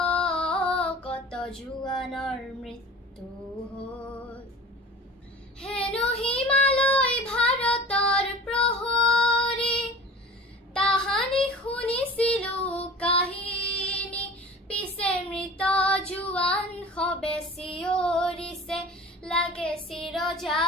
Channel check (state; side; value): normal; both; correlation 0.40